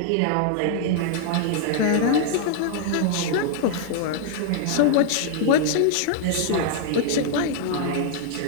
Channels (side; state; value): both; different; correlation -0.01